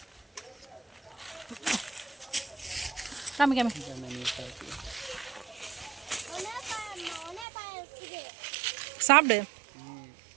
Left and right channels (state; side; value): drops out; left; at 7.5 s